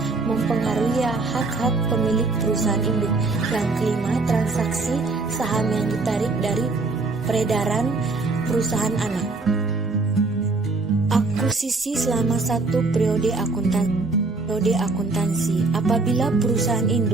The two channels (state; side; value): quieter; left; 3.6 dB